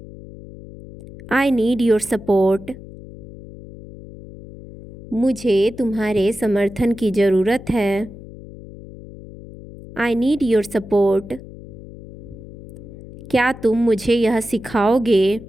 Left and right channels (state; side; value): noise; left; hum, 16 dB below the sound